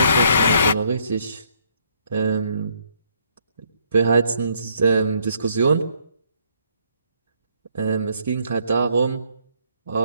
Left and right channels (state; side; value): inverted; both; correlation -0.69